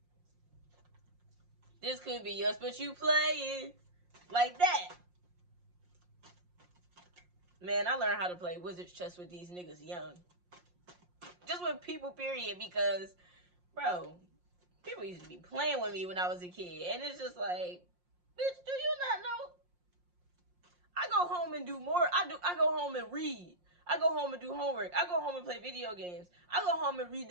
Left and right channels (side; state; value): left; late; 5.6 ms